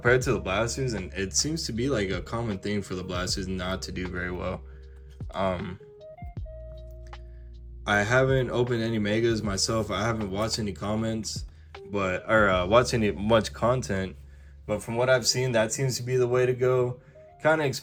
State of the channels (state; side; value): identical; both; correlation 1.00